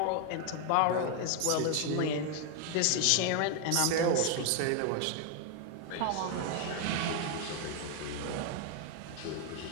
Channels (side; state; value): both; different; correlation 0.00